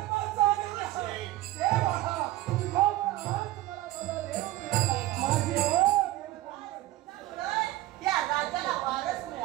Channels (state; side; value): quieter; left; 16.3 dB